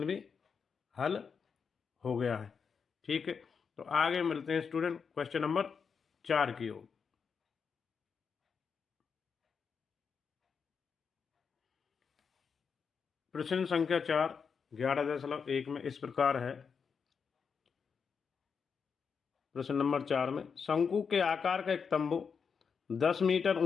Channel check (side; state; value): right; quieter; 6.1 dB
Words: भी हल हो गया है। ठीक है, तो आगे मिलते हैं स्टूडेंट क्वेश्चन नंबर 4 की ओर। प्रश्न संख्या 4 11.1 में इस प्रकार है। प्रश्न नंबर 4 में शंकु के आकार का एक तंबू 10 मीटर